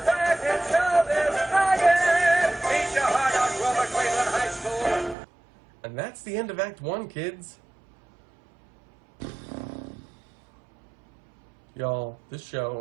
back in showbiz again. Beat your heart out, Grover Cleveland High School. And that's the end of Act 1, kids. Y'all, this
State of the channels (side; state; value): left; drops out; at 5.2 s